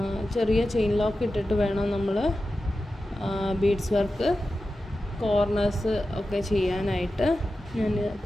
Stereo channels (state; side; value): normal; both; correlation 0.92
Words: ചെറിയ ചെയിൻ ലോക്ക് ഇട്ടിട്ട് വേണം നമ്മൾ ബീഡ്സ് വർക്ക് കോർണേഴ്സ് ഒക്കെ ചെയ്യാനായിട്ട്. ഞാൻ